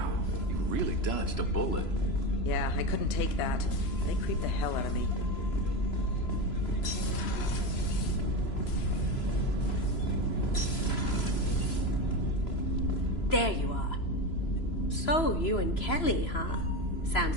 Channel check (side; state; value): right; late; 3.0 ms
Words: you really dodged a bullet. Yeah, I couldn't take that. They creeped the hell out of me. There you are. So, you and Kelly, huh? Sounds